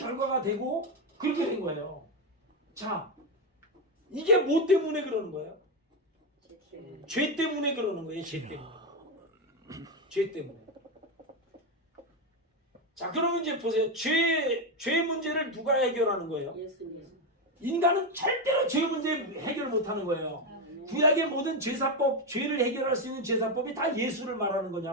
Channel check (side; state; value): both; normal; correlation 0.09